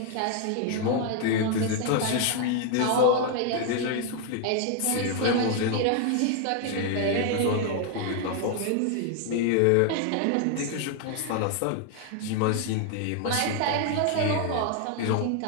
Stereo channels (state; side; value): different; both; correlation 0.00